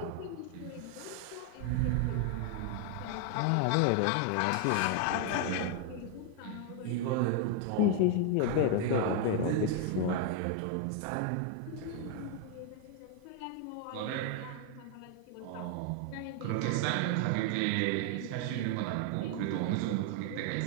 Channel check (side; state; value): both; different; correlation 0.01